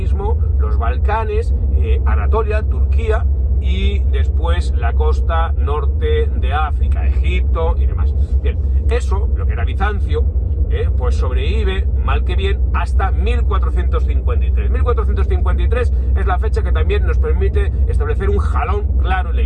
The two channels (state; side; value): identical; both; correlation 1.00